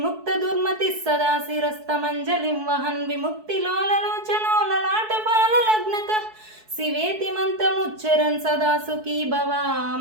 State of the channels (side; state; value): left; late; 4.6 ms